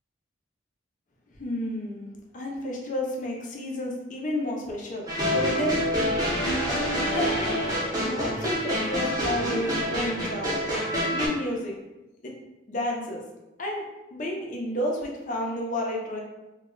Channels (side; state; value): both; normal; correlation 0.22